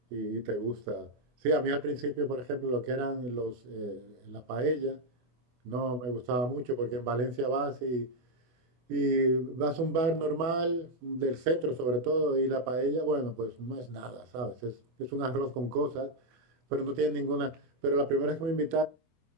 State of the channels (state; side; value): late; left; 24 ms